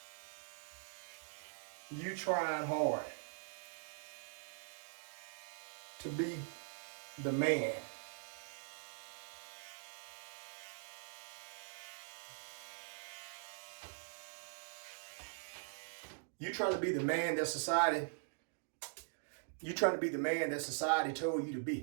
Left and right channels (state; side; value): silent; left; digital silence